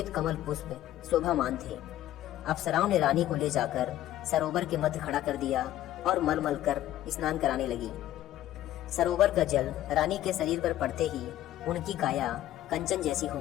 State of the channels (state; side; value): quieter; right; 13.4 dB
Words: कमल पुष्प शोभामान थे। अप्सराओं ने रानी को ले जाकर सरोवर के मध्य खड़ा कर दिया और मल कर स्नान कराने लगी। सरोवर का जल रानी के शरीर पर पड़ते ही उनकी काया कंचन जैसी हो